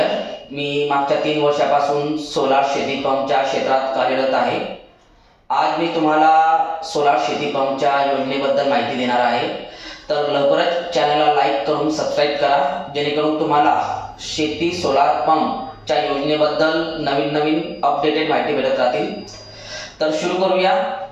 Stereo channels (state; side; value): identical; both; correlation 1.00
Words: मी मागच्या 3 वर्षापासून सोलार शेती पंपच्या क्षेत्रात कार्यरत आहे. आज मी तुम्हाला सोलार शेती पंपच्या योजनेबद्दल माहिती देणार आहे. तर लवकरच चॅनलला लाईक करून सबस्क्राईब करा, जेणेकरून तुम्हाला शेती सोलार पंपच्या योजनेबद्दल नवीन अपडेटेड माहिती भेटत राहतील. तर सुरू करूया.